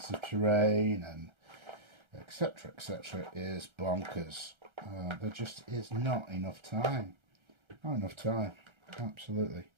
of terrain and etc is bonkers. There just is not enough time. Absolutely.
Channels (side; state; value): left; late; 1.3 ms